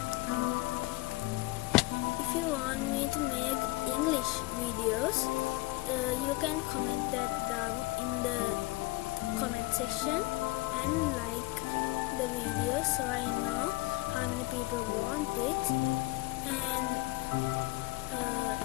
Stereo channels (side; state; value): right; quieter; 20.4 dB